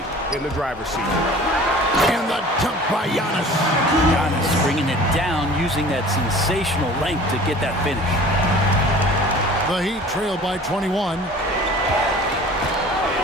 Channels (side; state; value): both; normal; correlation 0.45